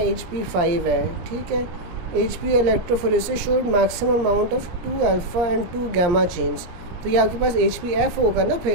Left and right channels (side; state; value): left; late; 17 ms